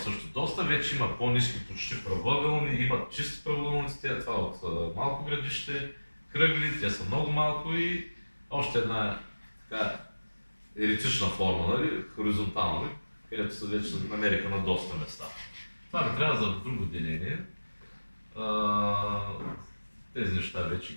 доста, вече има по-ниски, почти правоъгълни, има чисти правоъгълни, това от малко градище, кръгли, те са много малко и още една така еретична форма, нали, хоризонтална, където се вече намериха на доста места. Това ми трябва за друго деление. Тези неща вече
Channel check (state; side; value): inverted; both; correlation -1.00